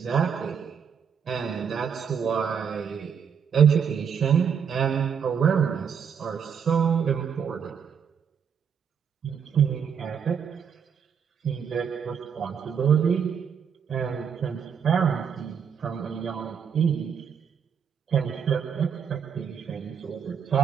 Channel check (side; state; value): left; quieter; 7.3 dB